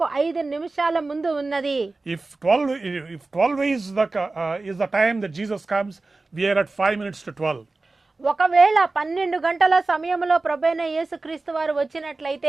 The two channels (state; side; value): quieter; left; 3.4 dB